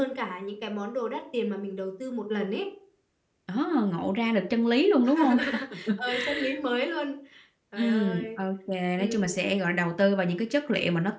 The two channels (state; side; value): identical; both; correlation 1.00